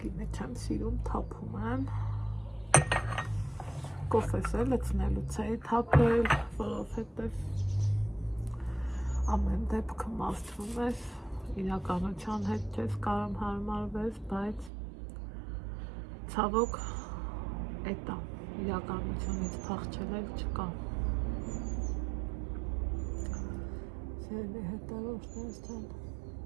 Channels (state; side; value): drops out; left; at 14.7 s